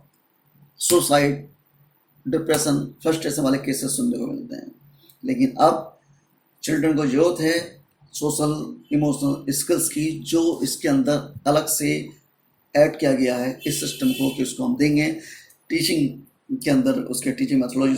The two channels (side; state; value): both; identical; correlation 1.00